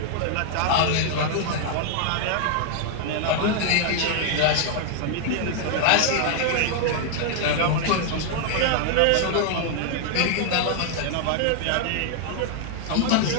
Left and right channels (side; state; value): both; different; correlation 0.00